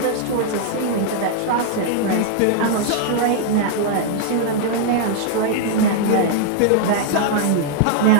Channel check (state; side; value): different; both; correlation -0.01